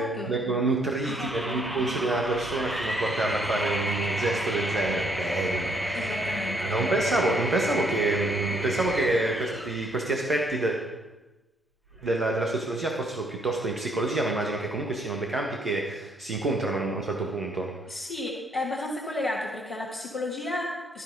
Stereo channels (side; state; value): both; normal; correlation 0.68